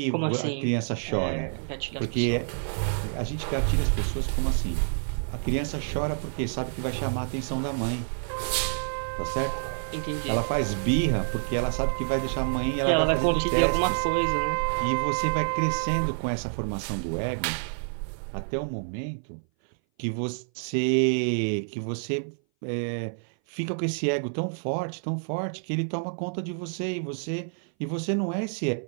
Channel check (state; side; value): silent; left; 58 dB below the other